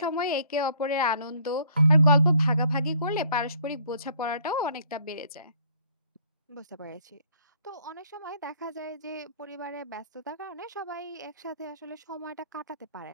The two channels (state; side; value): inverted; both; correlation -0.60